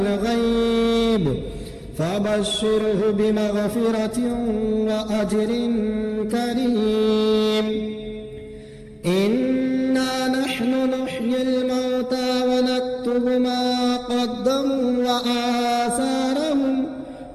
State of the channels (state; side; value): identical; both; correlation 1.00